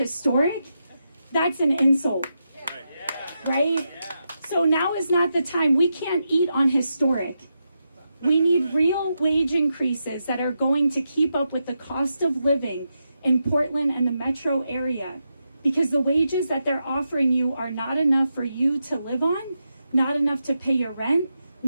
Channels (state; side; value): inverted; both; correlation -0.86